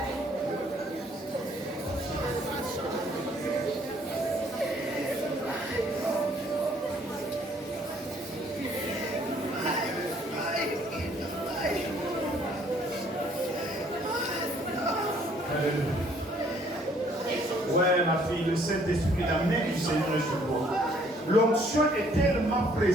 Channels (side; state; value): both; normal; correlation 0.62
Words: Ouais, ma fille, le Saint-Esprit, la main du Seigneur est sur toi. L'onction est tellement